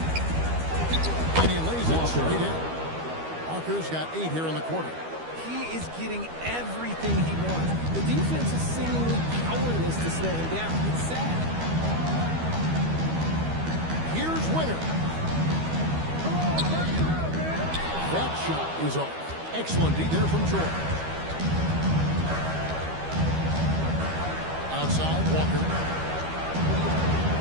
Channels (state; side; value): late; left; 12 ms